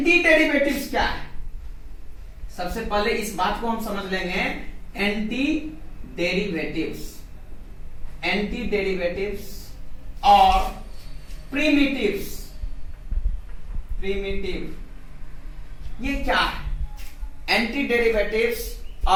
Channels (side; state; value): both; identical; correlation 1.00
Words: डेरिवेटिव्स क्या है, सबसे पहले इस बात को हम समझ लेंगे। एंटी डेरिवेटिव्स और प्रिमिटिव्स। ये क्या है, एंटी डेरिवेटिव्स